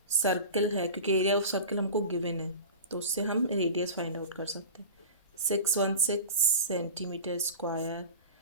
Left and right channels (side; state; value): both; inverted; correlation -0.32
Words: सर्कल है, क्योंकि एरिया ऑफ सर्कल हमको गिवन है तो उससे हम रेडियस फाइंड आउट कर सकते हैं। 616 centimetre square